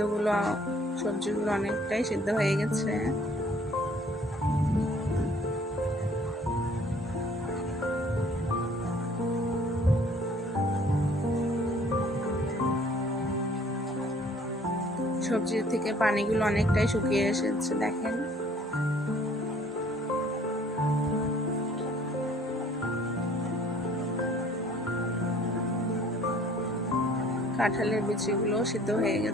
সবজিগুলো অনেকটাই সিদ্ধ হয়ে গেছে। সবজি থেকে পানিগুলো অনেকটাই শুকিয়ে এসেছে, দেখেন। কাঁঠালের বিচিগুলো সিদ্ধ হয়ে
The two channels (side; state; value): both; normal; correlation 0.56